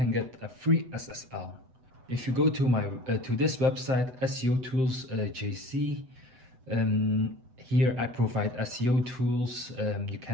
get a free SSL. If you go to this website, SEO Tools JC, here I provide SEO tools. You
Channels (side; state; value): left; late; 8.1 ms